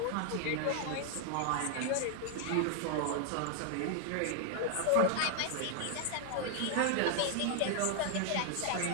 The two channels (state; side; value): different; both; correlation 0.00